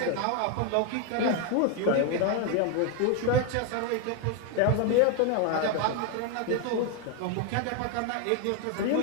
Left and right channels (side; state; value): both; different; correlation 0.01